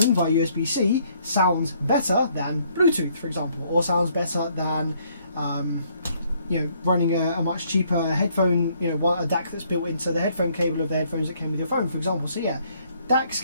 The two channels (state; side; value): inverted; both; correlation -0.66